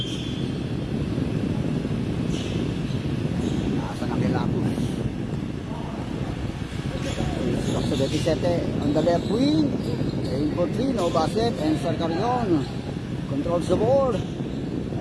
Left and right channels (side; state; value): both; identical; correlation 1.00